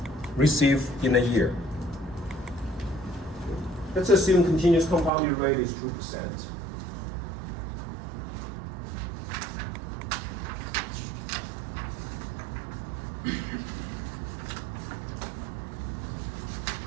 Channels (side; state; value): left; drops out; at 5.1 s